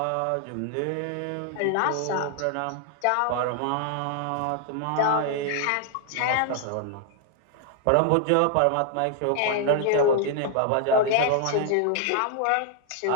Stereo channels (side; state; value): both; different; correlation 0.00